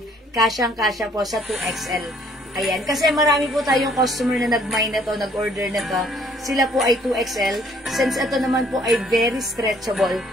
Kasyang-kasya po sa 2XL. Ayan, kasi marami po tayong customer na nag-mine na to, nag-order na to. Sila po ay 2XL. Since ito naman po ay very stretchable,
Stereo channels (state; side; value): normal; both; correlation 0.62